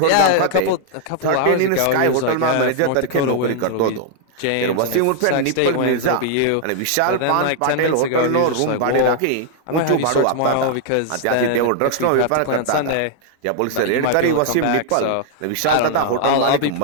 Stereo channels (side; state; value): both; different; correlation 0.00